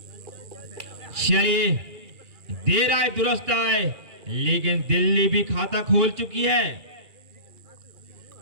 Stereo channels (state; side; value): late; left; 2.4 ms